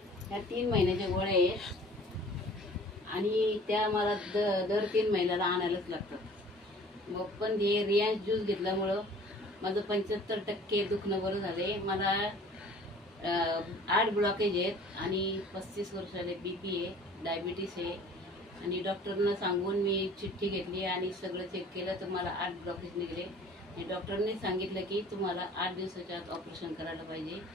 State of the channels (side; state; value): both; normal; correlation 0.49